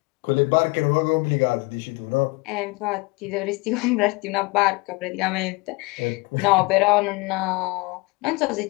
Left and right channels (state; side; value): quieter; right; 25.2 dB